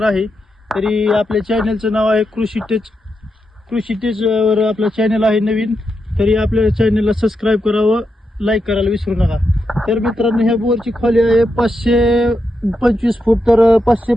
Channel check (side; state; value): both; normal; correlation 0.85